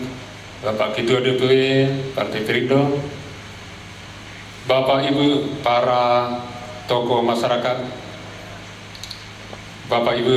Bapak Ketua DPW Partai Perindo, Bapak Ibu para tokoh masyarakat, Bapak Ibu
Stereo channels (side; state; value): both; identical; correlation 1.00